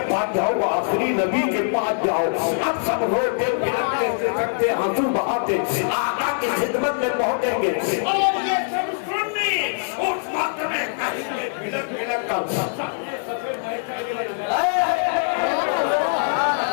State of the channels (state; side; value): silent; right; digital silence